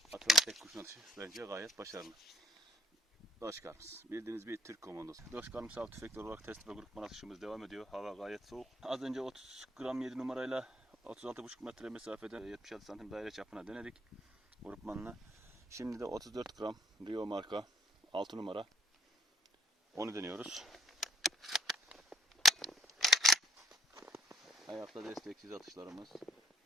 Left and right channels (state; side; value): normal; both; correlation 0.65